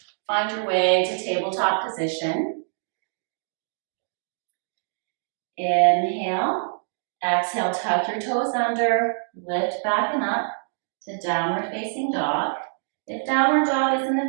find your way to tabletop position. Inhale. Exhale, tuck your toes under, lift back and up to downward facing dog. If downward dog isn't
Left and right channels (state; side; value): silent; left; digital silence